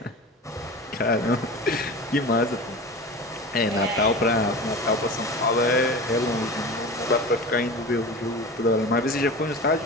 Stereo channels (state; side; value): normal; both; correlation 0.32